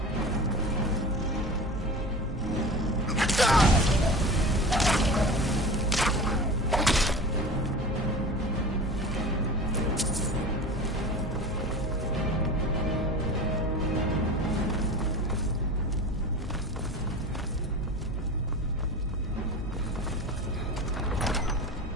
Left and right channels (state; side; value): normal; both; correlation 0.33